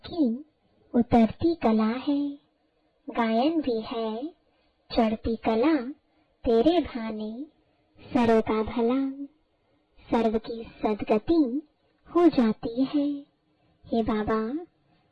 की उतरती कला है। गायन भी है चढ़ती कला, तेरे भाने सर्व का भला। सर्व की सदगति हो जाती है। हे बाबा,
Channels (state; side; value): identical; both; correlation 1.00